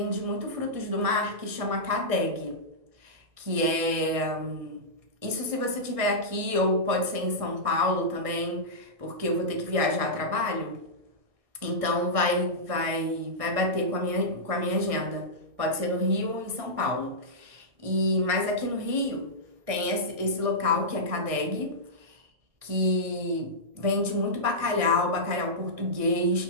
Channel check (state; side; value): late; left; 1.6 ms